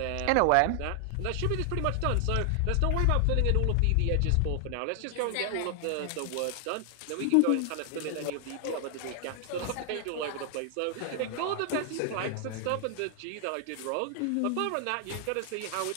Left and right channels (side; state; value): both; different; correlation 0.00